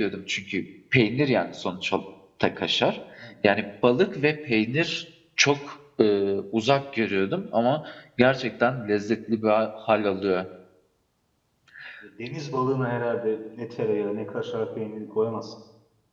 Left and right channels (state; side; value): identical; both; correlation 1.00